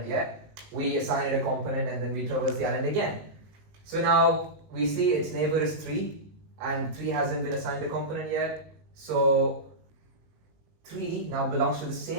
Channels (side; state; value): left; late; 19 ms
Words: yet. We assign it a component and then we traverse the island again. So now we see its neighbor is 3, and 3 hasn't been assigned a component yet. So 3 now belongs to the